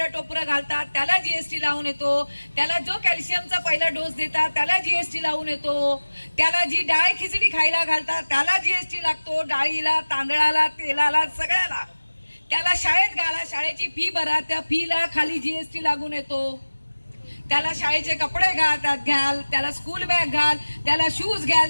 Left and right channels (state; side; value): inverted; both; correlation -1.00